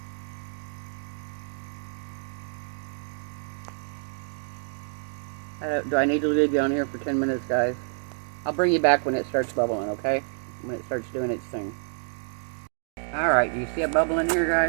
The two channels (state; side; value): silent; left; 59 dB below the other